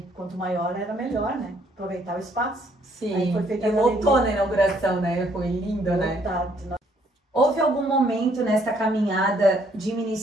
Quanto maior era melhor, né? Aproveitar o espaço. Aí foi feita a galeria. Lotou na inauguração, né? Foi lindo, né? Houve algum momento nessa caminhada de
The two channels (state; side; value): normal; both; correlation 0.66